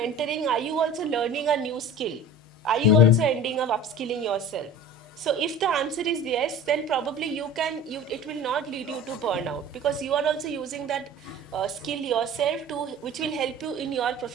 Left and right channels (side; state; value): both; normal; correlation 0.38